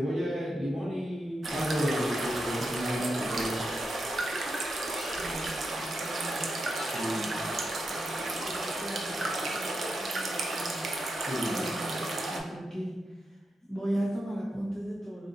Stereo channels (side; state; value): both; normal; correlation 0.87